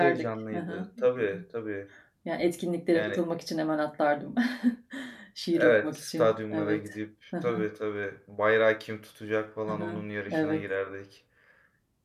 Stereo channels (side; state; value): both; identical; correlation 1.00